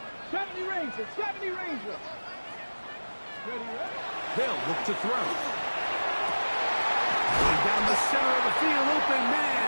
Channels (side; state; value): both; inverted; correlation -1.00